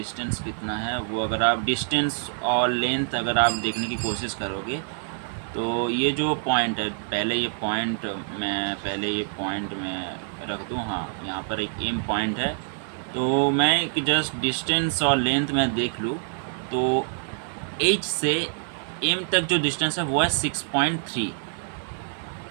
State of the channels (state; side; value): silent; left; 61 dB below the other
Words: है, वो अगर आप डिस्टेंस और लेंथ अगर आप देखने की कोशिश करोगे तो ये जो पॉइंट है, पहले ये पॉइंट मैं रख दूँ। हाँ, यहाँ पर एक एम पॉइंट है, तो मैं एक जस्ट डिस्टेंस और लेंथ में देख लूँ तो एच से एम तक जो डिस्टेंस है वो है 6.3,